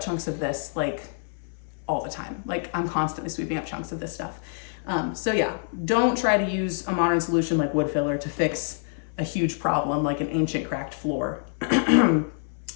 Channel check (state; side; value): silent; right; 61 dB below the other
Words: chunks of this like all the time. Like I'm constantly sweeping up chunks of this stuff. So yeah, don't try to use a modern solution like wood filler to fix a huge problem like an ancient cracked floor.